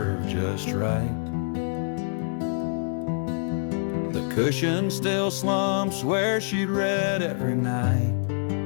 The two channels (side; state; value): right; silent; digital silence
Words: just right. The cushion still slumps where she'd read every night.